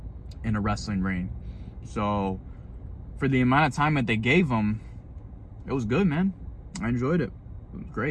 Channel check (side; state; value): both; identical; correlation 1.00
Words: in a wrestling ring. So for the amount of time that they gave him, it was good, man. I enjoyed it. It was